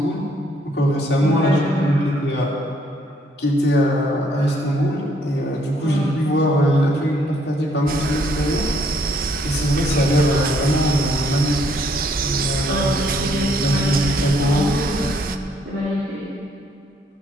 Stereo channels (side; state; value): both; normal; correlation 0.68